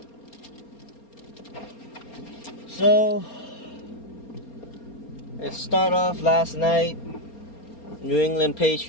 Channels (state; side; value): late; right; 4.3 ms